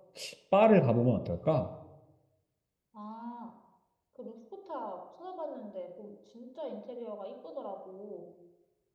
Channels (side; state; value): both; identical; correlation 1.00